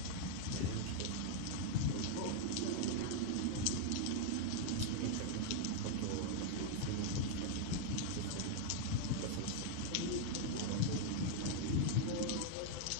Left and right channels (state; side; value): different; both; correlation 0.00